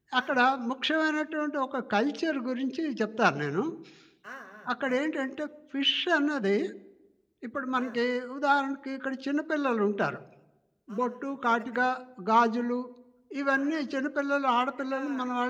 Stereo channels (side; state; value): both; identical; correlation 1.00